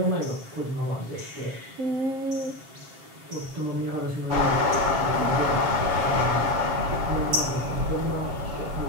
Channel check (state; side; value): late; left; 7.4 ms